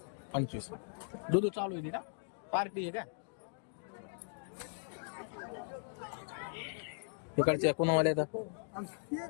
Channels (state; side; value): silent; right; digital silence